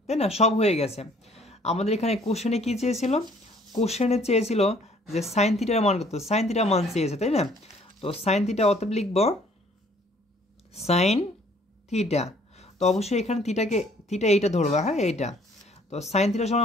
তাই না? সব হয়ে গেছে। আমাদের এখানে কোশ্চেনে কি চেয়েছিল? কোশ্চেনে চেয়েছিল যে সাইন থিটার মান কত? সাইন থিটার মান চেয়েছে, তাই না? তো সাইন থিটা অতএব লিখব সাইন থিটা। তো অবশ্যই এখানে থিটা এইটা ধরবা, হ্যাঁ, এইটা। তো সাইন থিটার সমান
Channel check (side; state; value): both; normal; correlation 0.59